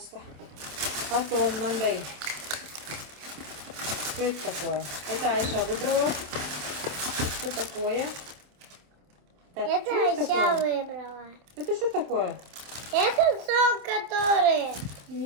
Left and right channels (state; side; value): late; left; 27 ms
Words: Потом мынандай. Что это такое? Это Айша выбрала. Что такое? Так, Это Айша выбрала. Это что такое? Это сок, который...